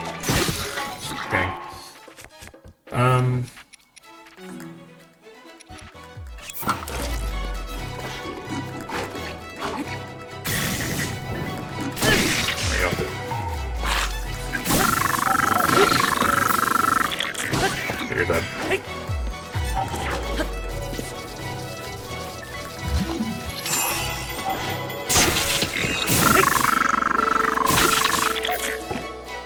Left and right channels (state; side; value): identical; both; correlation 1.00